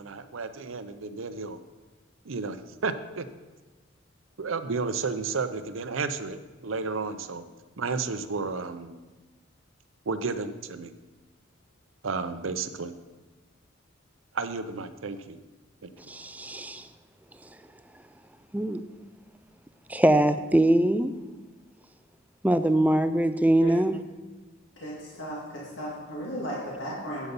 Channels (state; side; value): normal; both; correlation 0.69